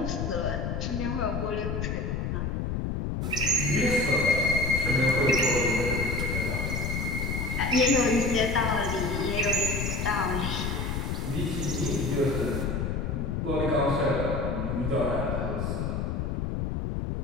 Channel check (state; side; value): noise; left; rumble, 1 dB below the sound